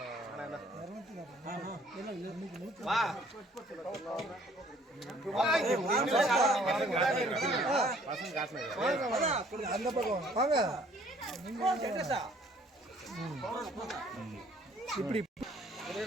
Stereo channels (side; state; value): both; normal; correlation 0.59